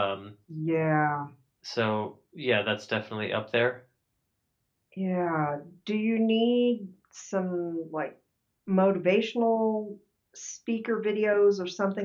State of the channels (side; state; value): both; identical; correlation 1.00